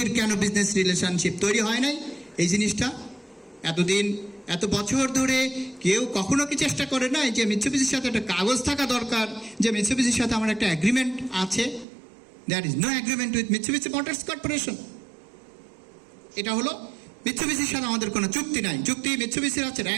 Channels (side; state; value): left; drops out; at 11.9 s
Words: কেন বিজনেস রিলেশনশিপ তৈরি হয় নাই? এই জিনিসটা এতদিন এত বছর ধরে কেউ কখনো কি চেষ্টা করে নাই যে মিৎসুবিশির সাথে একটা কাগজ থাকা দরকার, যে মিৎসুবিশির সাথে আমার একটা এগ্রিমেন্ট আছে? That is no agreement with Mitsubishi Motors Corporation. এটা হলো মিৎসুবিশির সাথে আমাদের কোনো চুক্তি নাই। চুক্তি মিৎসুবিশির আছে